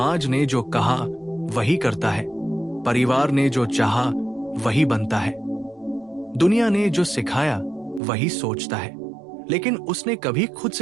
ने जो कहा वही करता है, परिवार ने जो चाहा वही बनता है, दुनिया ने जो सिखाया वही सोचता है। लेकिन उसने कभी खुद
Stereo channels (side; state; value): left; drops out; at 8.0 s